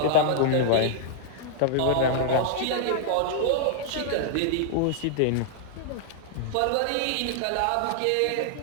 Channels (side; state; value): both; different; correlation -0.01